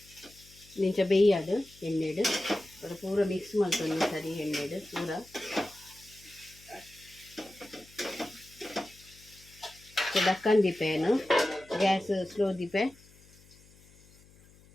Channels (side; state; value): left; noise; hum, 26 dB below the sound